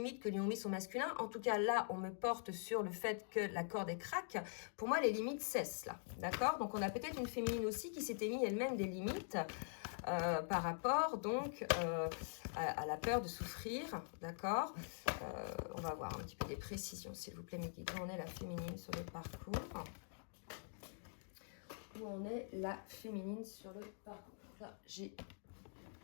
que lui ont mis son masculin? En tout cas là on me porte sur le fait que la corde est craque. Pour moi les limites cessent là, d'accord? Donc on a peut-être une féminine aussi qui s'était mis elle-même des limites par rapport donc à la peur de souffrir, d'accord? On va voir un petit peu des précisions, s'il vous plaît, mes guides. Où en est la féminine sur le parcours? Où en est la féminine sur le parcours? Là, j'ai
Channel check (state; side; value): silent; right; digital silence